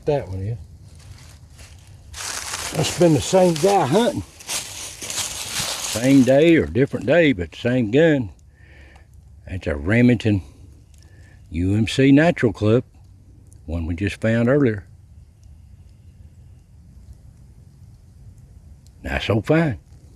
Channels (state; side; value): identical; both; correlation 1.00